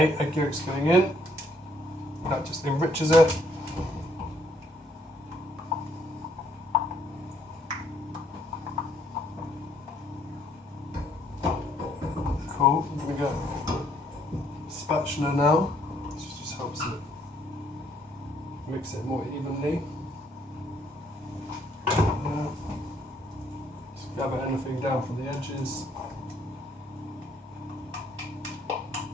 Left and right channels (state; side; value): normal; both; correlation 0.67